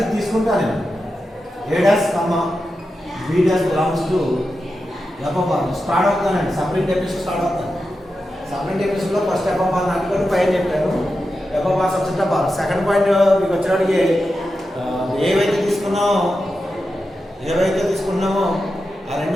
తీసుకుంటాను నేను A dash comma B dash belongs to FR start అవుతానండి. సపరేట్ ఎపిసోడ్ స్టార్ట్ అవుతాను. సపరేట్ ఎపిసోడ్లో ఫస్ట్ ఎఫ్ఆర్ నాటుకొని పైన చెప్పాను FR subject FR. Second point మీకు వచ్చేవాడికి ఏవైతే తీసుకున్నామో ఆ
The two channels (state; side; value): normal; both; correlation 0.90